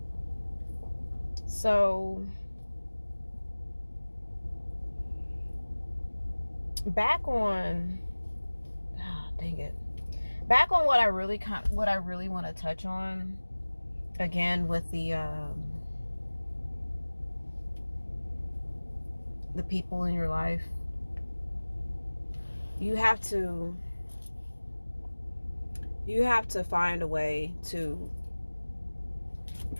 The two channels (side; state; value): both; inverted; correlation -1.00